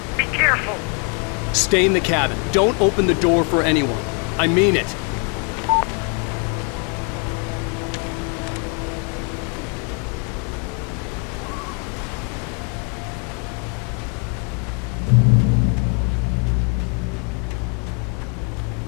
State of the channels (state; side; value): quieter; right; 35.2 dB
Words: be careful. Stay in the cabin. Don't open the door for anyone. I mean it.